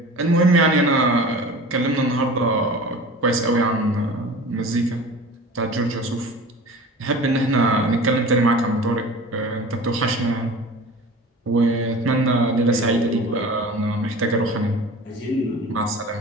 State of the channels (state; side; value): normal; both; correlation 0.38